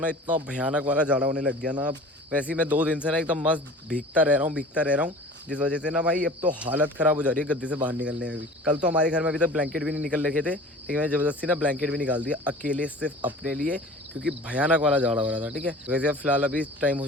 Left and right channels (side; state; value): both; normal; correlation 0.42